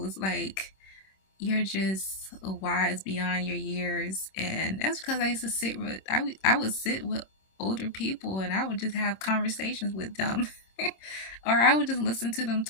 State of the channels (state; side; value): late; right; 26 ms